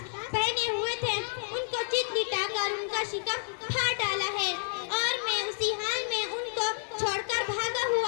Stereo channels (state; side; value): silent; right; 58 dB below the other